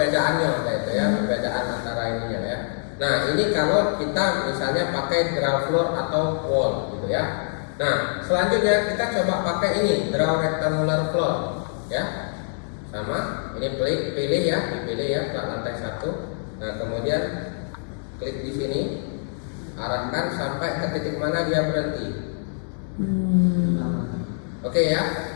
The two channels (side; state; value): right; silent; digital silence